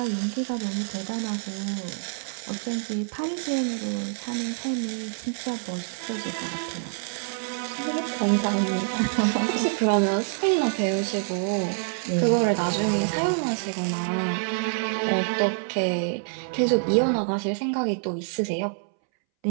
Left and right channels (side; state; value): left; silent; 61 dB below the other